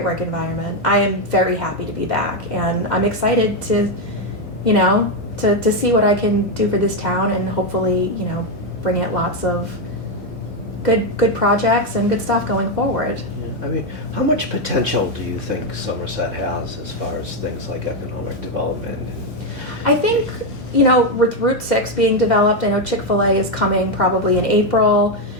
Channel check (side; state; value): both; normal; correlation 0.05